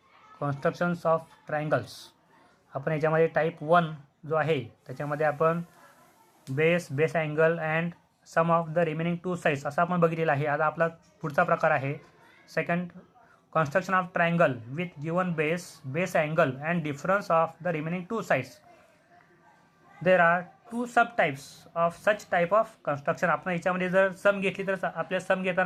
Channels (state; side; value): identical; both; correlation 1.00